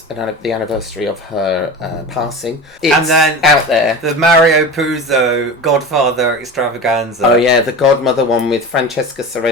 the anniversary of her passing. It's and then out there. The Mario Puzo Godfather Extravaganza. Oh yeah, the Godmother one with Francesca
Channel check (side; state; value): both; normal; correlation 0.30